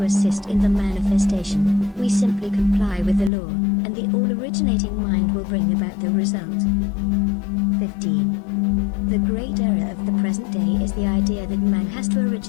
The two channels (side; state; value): right; drops out; at 3.3 s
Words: assist in the manifestation. We simply comply with the law, and the all-originating mind will bring about the result. 15. The great error of the present day is the idea that man has to